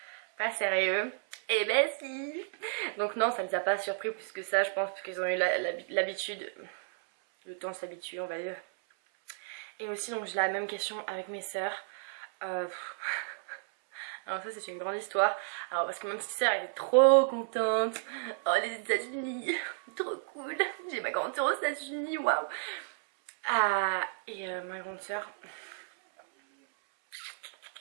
pas sérieux. Et ben si. Donc non, ça les a pas surpris plus que ça, je pense, parce qu'ils ont eu l'habitude, le temps de s'habituer on va dire. Et aussi donc j'ai la même question avec mes sœurs. Alors ça c'est une grande histoire. Alors parce que ma petite sœur elle est trop contente. Oh les États-Unis, trop cool. J'ai ma grande sœur aux États-Unis, waouh. Et ma grande sœur,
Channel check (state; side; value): silent; left; 56 dB below the other